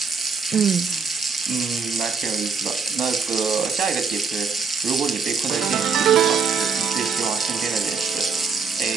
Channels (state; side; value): quieter; left; 5.3 dB